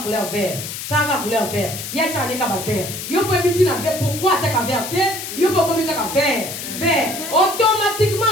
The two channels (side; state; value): left; noise; hiss, 7 dB below the sound